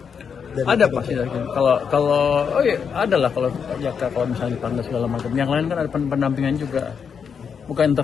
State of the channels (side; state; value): right; quieter; 6.7 dB